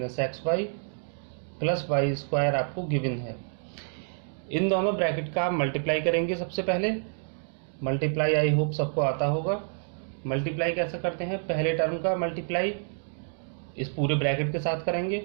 xy plus y² आपको गिवन है। इन दोनों ब्रैकेट का आप मल्टीप्लाई करेंगे। सबसे पहले मल्टीप्लाई आई होप सबको आता होगा। मल्टीप्लाई कैसे करते हैं, पहले टर्म का मल्टीप्लाई इस पूरे ब्रैकेट के साथ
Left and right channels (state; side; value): silent; left; digital silence